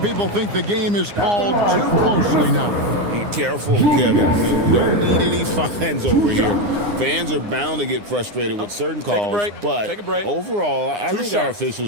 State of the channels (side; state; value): left; late; 9.7 ms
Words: think the game is called too closely now. Be careful, Kevin. We don't need any fines over here. Fans are bound to get frustrated with certain calls. But overall, I think our